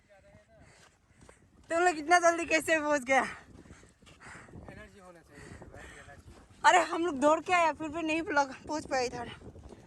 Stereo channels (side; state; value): both; identical; correlation 1.00